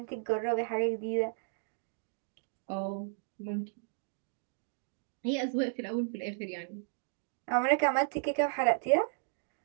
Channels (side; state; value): left; silent; digital silence